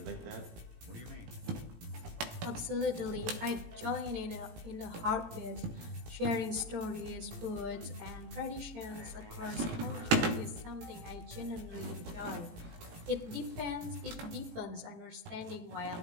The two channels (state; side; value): late; left; 18 ms